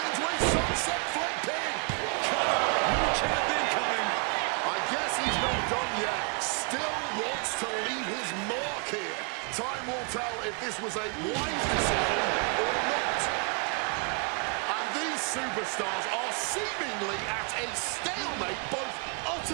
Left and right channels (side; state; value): left; quieter; 36.8 dB